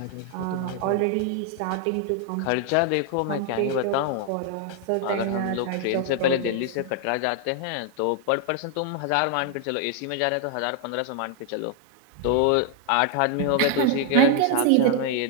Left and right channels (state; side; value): different; both; correlation 0.00